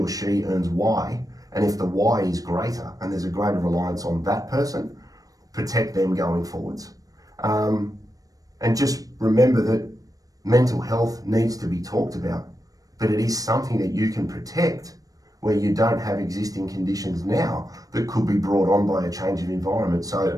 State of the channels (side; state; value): left; late; 0.17 ms